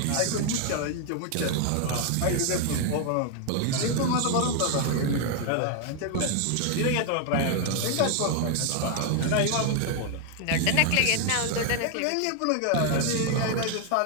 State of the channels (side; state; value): both; different; correlation 0.00